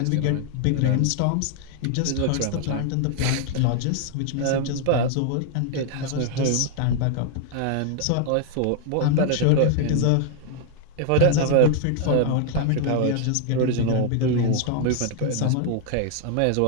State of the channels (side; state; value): both; different; correlation 0.00